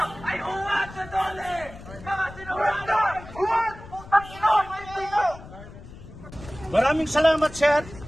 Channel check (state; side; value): noise; left; rumble, 16 dB below the sound